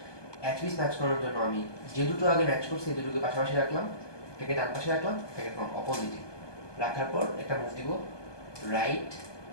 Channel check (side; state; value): right; late; 1.2 ms